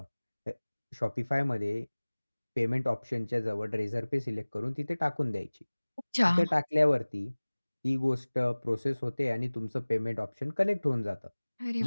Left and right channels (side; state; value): both; inverted; correlation -1.00